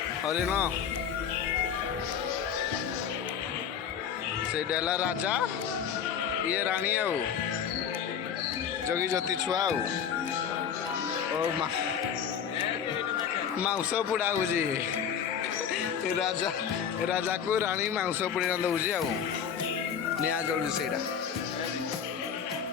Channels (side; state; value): right; quieter; 7.9 dB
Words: हरिण से डेला राजा ये राणी आउ जगी जति छुआ मांस पुड़ा होजी राजा राजा को राणी मांस पुड़ी दौजी आ निया जलुची से